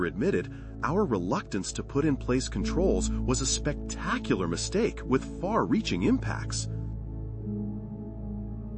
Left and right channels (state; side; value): identical; both; correlation 1.00